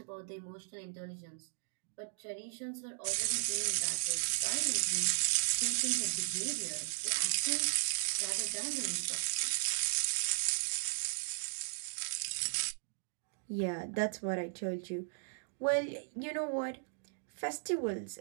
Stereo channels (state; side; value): silent; left; digital silence